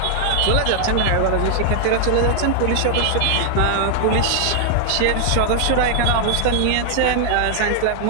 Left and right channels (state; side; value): different; both; correlation 0.00